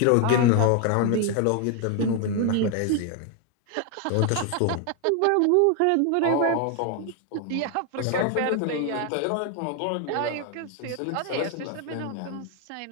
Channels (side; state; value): both; different; correlation 0.01